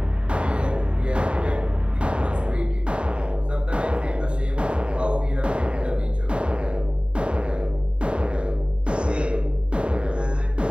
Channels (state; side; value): late; left; 0.054 ms